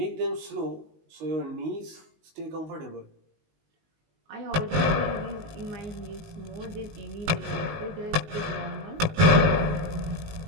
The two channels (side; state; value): left; late; 19 ms